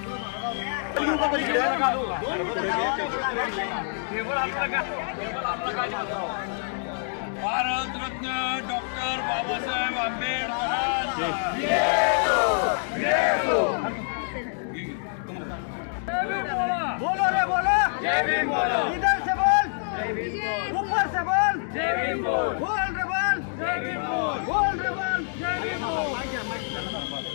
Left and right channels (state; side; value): silent; right; digital silence